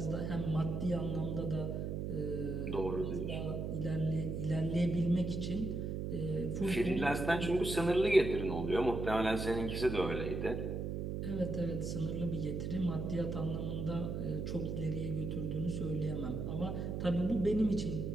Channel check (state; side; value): noise; right; hum, 2 dB below the sound